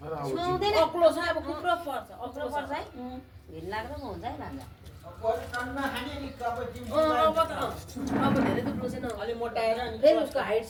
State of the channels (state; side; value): identical; both; correlation 1.00